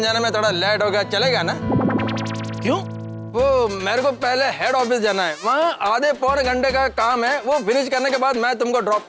जाने में थोड़ा लेट हो गया, चलेगा ना? क्यों? वो मेरे को पहले हेड ऑफिस जाना है, वहाँ आधे पौने घंटे का काम है, वो फिनिश करने के बाद मैं तुमको ड्रॉप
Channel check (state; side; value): identical; both; correlation 1.00